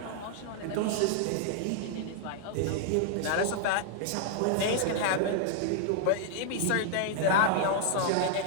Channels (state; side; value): different; both; correlation 0.00